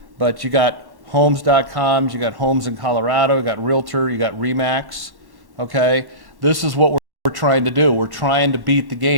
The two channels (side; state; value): left; late; 1.1 ms